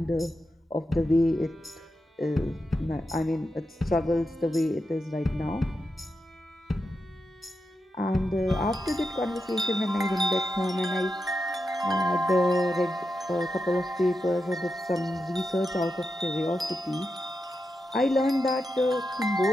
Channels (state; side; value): normal; both; correlation 0.88